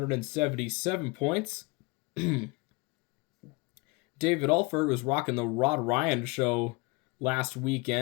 points. David Alford was rocking the Rod Ryan show last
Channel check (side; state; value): right; quieter; 26.8 dB